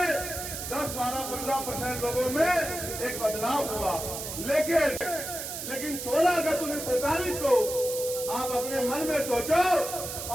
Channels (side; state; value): right; noise; hiss, 6 dB below the sound